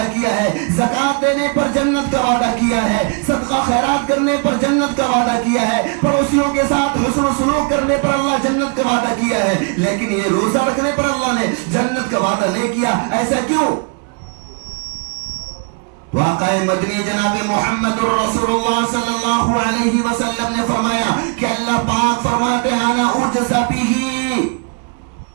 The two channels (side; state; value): left; quieter; 35.3 dB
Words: کیا ہے، زکوٰۃ دینے پر جنت کا وعدہ کیا ہے، صدقہ خیرات کرنے پر جنت کا وعدہ کیا ہے، پڑوسیوں کے ساتھ حسن و سلوک کرنے پر اللہ جنت کا وعدہ کیا ہے، لیکن یہ روزہ رکھنے پر اللہ نے جنت کا وعدہ نہیں کیا۔ ایسا کیوں؟ واقع مدنی جناب محمد الرسول اللہ صلی اللہ علیہ وسلم نے فرمایا کہ اللہ پاک فرماتے ہیں انا اجزا بہ،